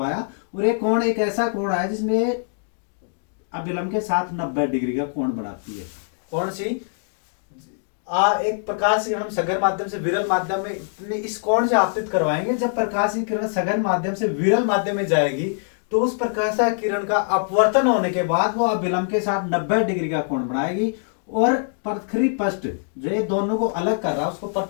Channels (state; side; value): silent; right; digital silence